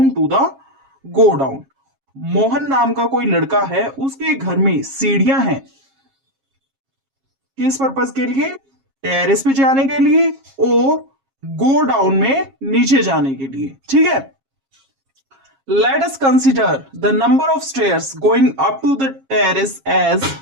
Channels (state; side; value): late; left; 7.4 ms